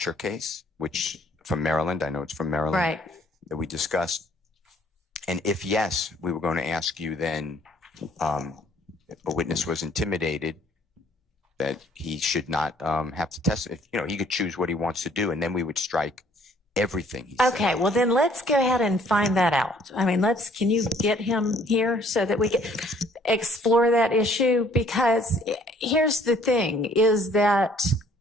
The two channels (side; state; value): both; normal; correlation 0.60